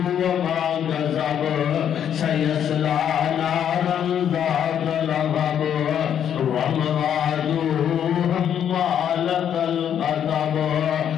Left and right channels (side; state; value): right; quieter; 9.2 dB